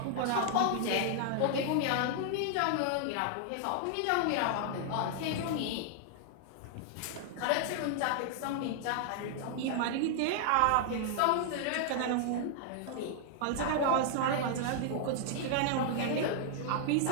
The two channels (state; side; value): different; both; correlation 0.00